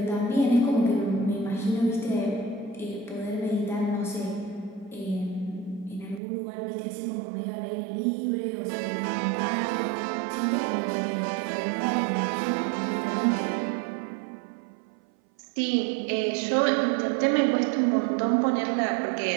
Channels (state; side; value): drops out; left; at 6.2 s